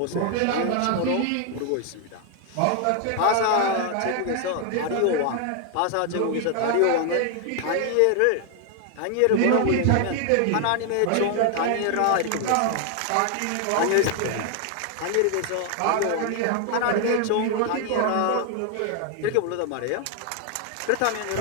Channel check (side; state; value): both; different; correlation 0.00